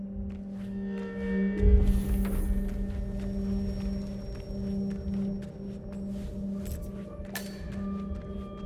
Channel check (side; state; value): both; identical; correlation 1.00